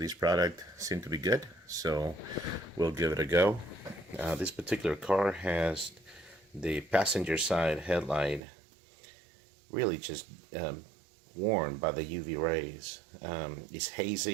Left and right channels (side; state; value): left; drops out; at 8.4 s